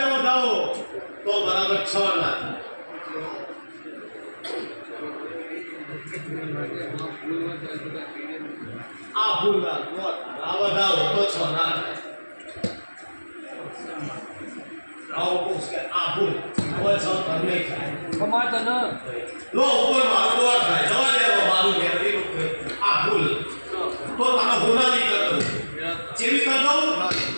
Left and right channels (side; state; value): both; inverted; correlation -1.00